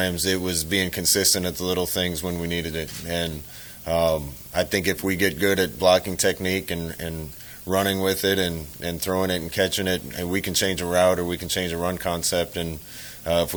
It was being consistent at the little things when we needed it. And I think if we get good at blocking technique and running with it and throwing it and catching it, and we can change a route or we can change a run concept. And if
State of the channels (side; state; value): right; noise; rumble, 26 dB below the sound